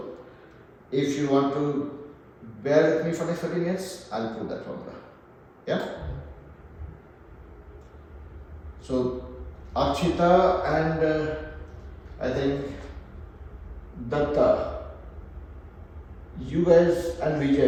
If you want to bear with me for next 30 minutes, I'll prove that formula. Yeah? So, Akshita and I think Datta, you guys, and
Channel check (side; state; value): both; identical; correlation 1.00